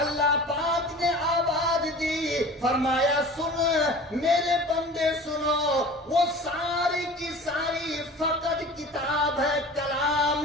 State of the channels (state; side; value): normal; both; correlation 0.41